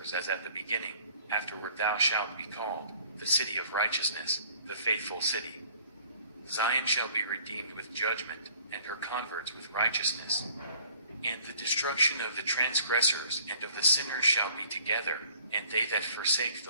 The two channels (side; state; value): both; inverted; correlation -0.54